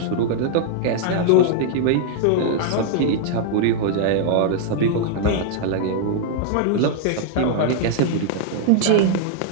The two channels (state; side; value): different; both; correlation -0.01